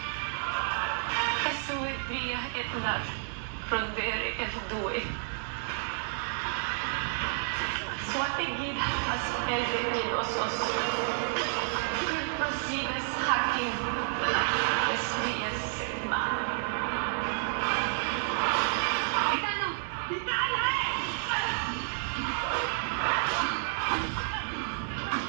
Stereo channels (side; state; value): left; silent; digital silence